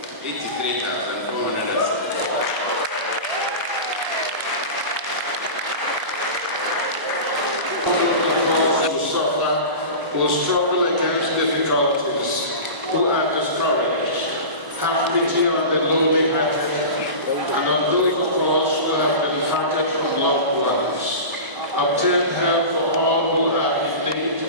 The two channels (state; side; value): late; left; 1.0 ms